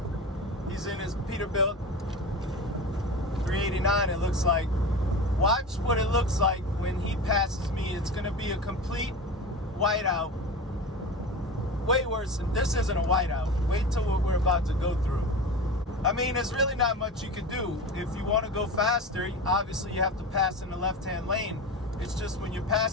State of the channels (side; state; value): both; normal; correlation 0.28